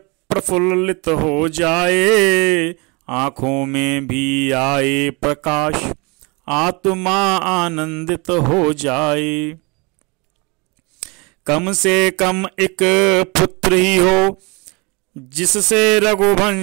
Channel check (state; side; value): quieter; left; 28.6 dB